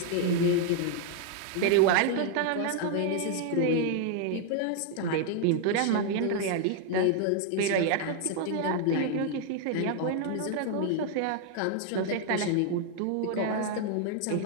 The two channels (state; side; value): different; both; correlation 0.00